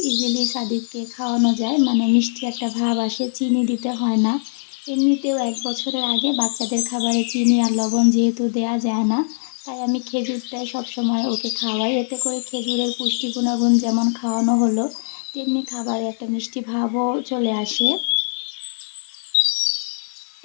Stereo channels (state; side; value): silent; right; 65 dB below the other